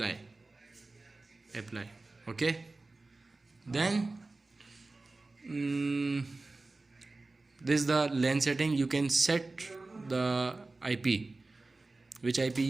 Okay, then this is the LAN setting. You can set the IP, which IP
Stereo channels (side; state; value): left; quieter; 3.3 dB